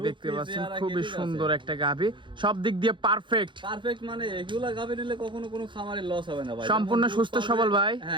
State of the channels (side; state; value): left; late; 0.23 ms